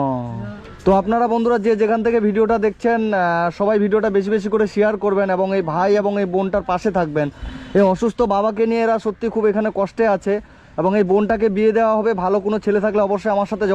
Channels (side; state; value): both; identical; correlation 1.00